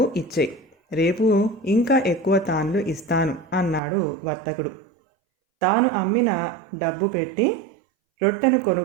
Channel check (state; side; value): drops out; left; at 3.8 s